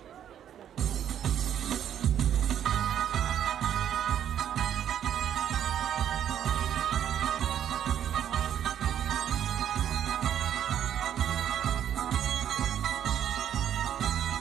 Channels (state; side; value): quieter; left; 9.9 dB